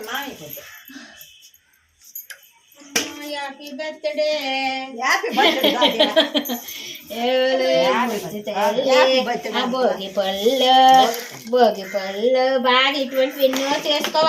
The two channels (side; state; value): both; identical; correlation 1.00